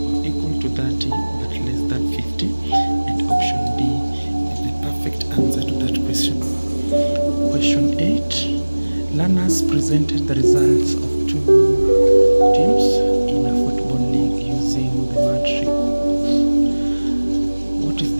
or equal to 30 but less than 50, and option D is the perfect answer to that question. Question 8. Learners presented the results of two teams in a football league using the matrix. What is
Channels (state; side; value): inverted; both; correlation -1.00